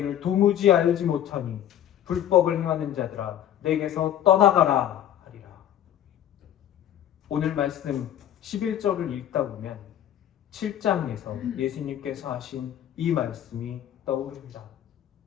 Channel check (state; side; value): quieter; right; 11.0 dB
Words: 도무지 알지 못하니 불법을 행하는 자들아 내게서 떠나가라 하리라. 오늘 말씀 11절을 읽다 보면 7장에서 예수님께서 하신 이 말씀이 떠오릅니다.